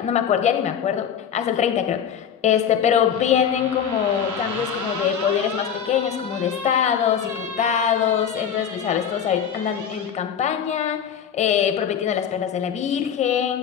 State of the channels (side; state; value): right; quieter; 8.2 dB